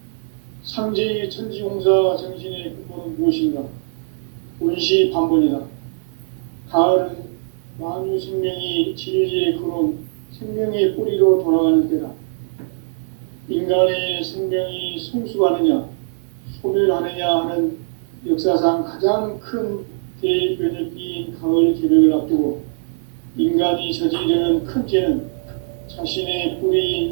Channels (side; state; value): left; silent; digital silence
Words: 상제의 천지공사 정신의 근본은 무엇인가? 운시반본이다. 가을은 만유 생명이 진리의 근원, 생명의 뿌리로 돌아가는 때다. 인간의 생명이 성숙하느냐, 소멸하느냐 하는 역사상 가장 큰 대변혁기인 가을 개벽을 앞두고 인간이 저지르는 큰 죄는 자신의